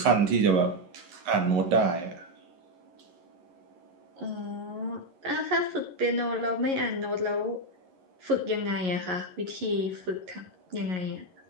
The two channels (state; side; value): late; left; 11 ms